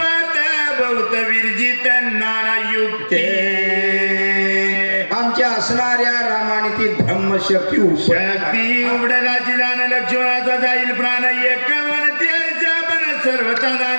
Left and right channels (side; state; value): both; inverted; correlation -1.00